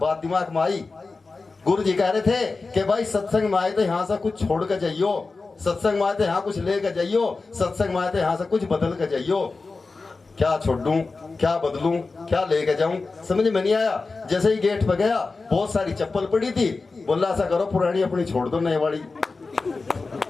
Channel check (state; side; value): quieter; right; 3.9 dB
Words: बात दिमाग में आई। गुरु जी कह रहे थे कि भाई सत्संग में आए तो यहाँ से कुछ छोड़ कर जाइयो, सत्संग में आए तो यहाँ कुछ लेकर जाइयो, सत्संग में आए तो यहाँ से कुछ बदल कर जाइयो। क्या छोड़ूं, क्या बदलूं, क्या लेके जाऊं, समझ में नहीं आया। जैसे ही गेट पे गया, बहुत सारी चप्पल पड़ी थी, बोला ऐसा करो पुरानी अपनी छोड़ दो, नई वाली।